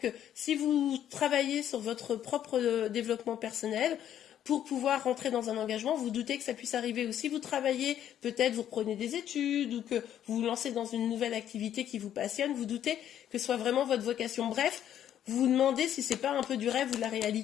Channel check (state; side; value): quieter; right; 10.6 dB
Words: si vous travaillez sur votre propre développement personnel, pour pouvoir rentrer dans un engagement, vous doutez que ça puisse arriver. Ou si vous travaillez, peut-être vous reprenez des études ou que vous vous lancez dans une nouvelle activité qui vous passionne, vous doutez que ce soit vraiment votre vocation. Bref, vous vous demandez si c'est pas un peu du rêve ou de la